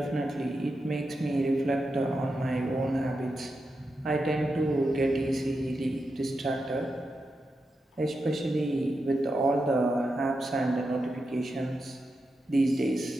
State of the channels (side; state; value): both; normal; correlation 0.88